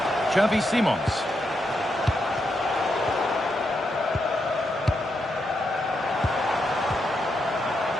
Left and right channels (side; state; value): both; normal; correlation 0.82